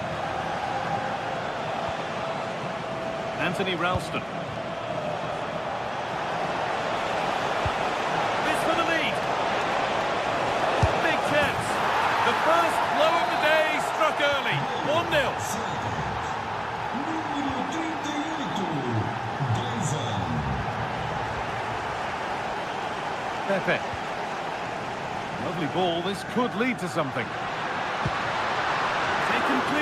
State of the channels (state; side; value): identical; both; correlation 1.00